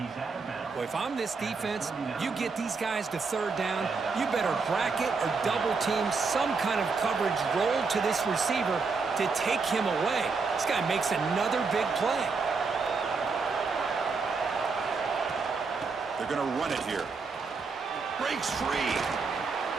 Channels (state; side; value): quieter; left; 4.6 dB